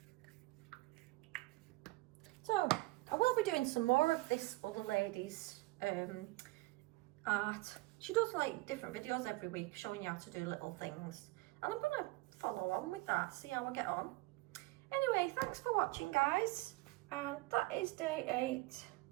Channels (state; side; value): quieter; left; 21.7 dB